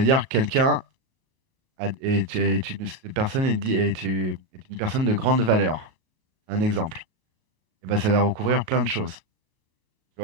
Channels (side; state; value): left; late; 37 ms